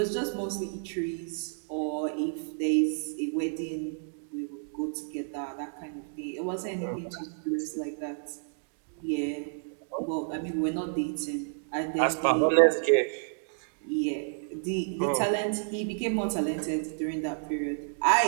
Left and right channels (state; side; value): silent; left; digital silence